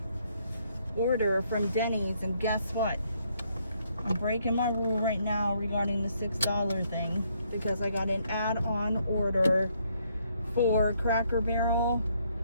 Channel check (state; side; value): inverted; both; correlation -0.70